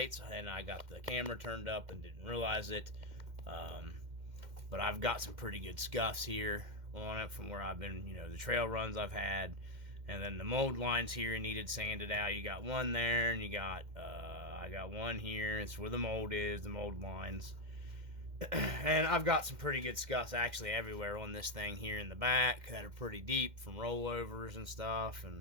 and I got the camera turned up and didn't realize it. But I've got some pretty good scuffs here on it from where I've been, the trail runs I've had. And then the mold lines here needed sanded out. You got one there, and you got, I got one here. It's where the mold is, the mold lines. And I've got some pretty good scuffs actually everywhere on this thing here in the back that are pretty deep from rollovers and stuff.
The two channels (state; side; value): late; left; 2.1 ms